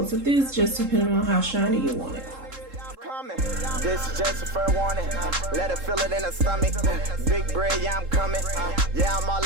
of this, just depending on how shiny you want it. This is just a fair warning. Let her feel it in her stomach. Big bread, yeah, I'm coming. Yeah, I'm all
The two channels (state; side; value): late; left; 3.7 ms